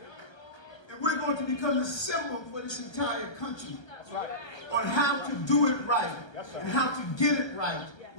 And we're going to become the symbol for this entire country on how to do it right and how to get it right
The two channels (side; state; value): right; late; 1.3 ms